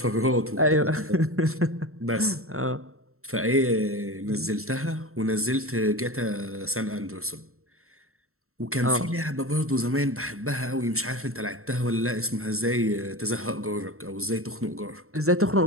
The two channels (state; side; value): late; left; 0.63 ms